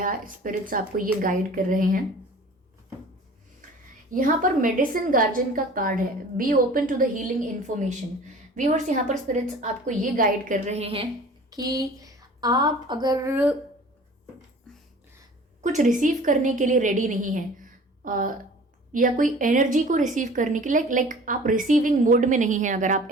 स्पिरिट्स आपको ये गाइड कर रहे हैं। यहाँ पर मेडिसिन गार्जियन का कार्ड है, be open to the healing information. Viewers, यहाँ पर स्पिरिट्स आपको ये गाइड कर रहे हैं कि आप अगर कुछ रिसीव करने के लिए रेडी नहीं हैं, या कोई एनर्जी को रिसीव करने के लिए लाइक आप रिसीविंग मोड में नहीं हैं, अगर आप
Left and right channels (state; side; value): normal; both; correlation 0.45